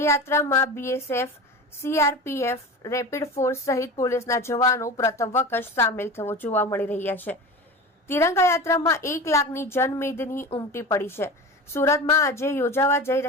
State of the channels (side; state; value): both; normal; correlation 0.31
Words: યાત્રામાં બીએસએફ, સીઆરપીએફ, રેપિડ ફોર્સ સહિત પોલીસના જવાનો પ્રથમ વખત સામેલ થવો જોવા મળી રહ્યા છે. તિરંગા યાત્રામાં 1 લાખની જનમેદની ઉમટી પડી છે. સુરતમાં આજે યોજાવા જઈ